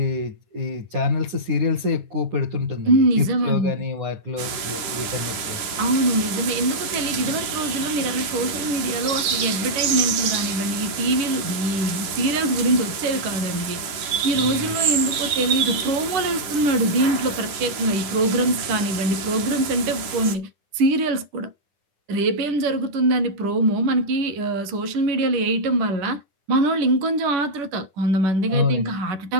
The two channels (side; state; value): left; late; 10 ms